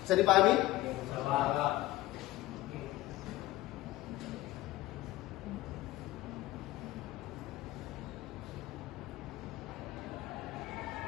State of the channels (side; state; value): right; quieter; 17.2 dB